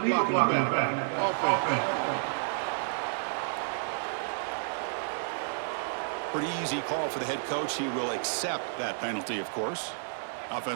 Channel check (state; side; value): silent; left; 57 dB below the other